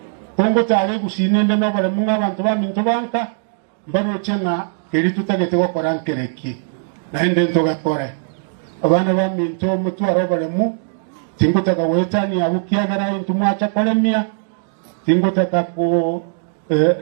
kongo tare gusinende no bare munga abantu ba mintu banka mbaro chenga keri tutagete gukora nkereki naende ntogakore abana ba mintu mutu arobare mu tingutaka wetani abukiagara intu mwacha kolemia tingutaka ko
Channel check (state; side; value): silent; left; digital silence